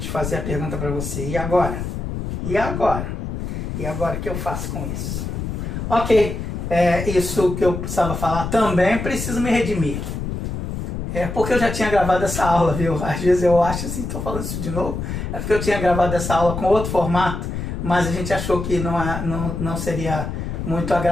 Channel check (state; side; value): noise; left; rumble, 5 dB below the sound